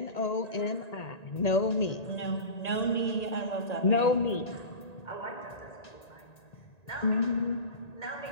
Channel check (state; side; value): late; right; 1.9 ms